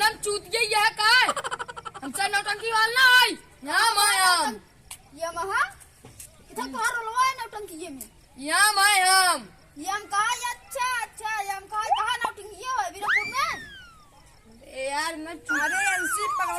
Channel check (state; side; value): identical; both; correlation 1.00